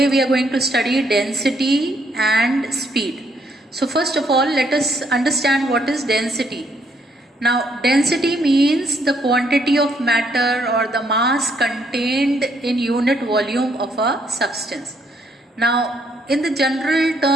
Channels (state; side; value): normal; both; correlation 0.71